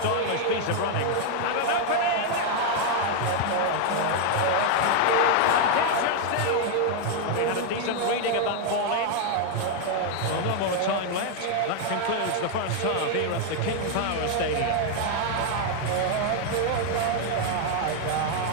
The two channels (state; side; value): different; both; correlation 0.00